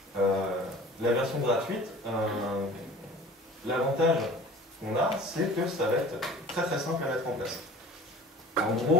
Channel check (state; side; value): normal; both; correlation 0.44